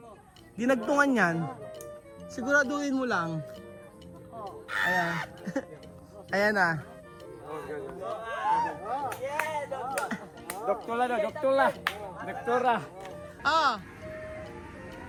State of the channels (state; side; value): identical; both; correlation 1.00